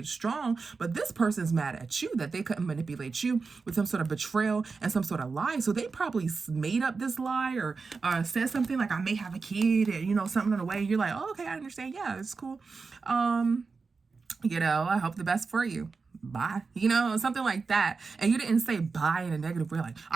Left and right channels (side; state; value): left; quieter; 4.6 dB